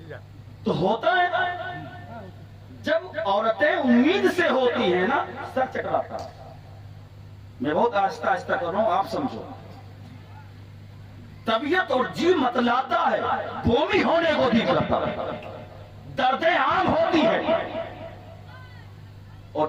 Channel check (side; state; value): both; identical; correlation 1.00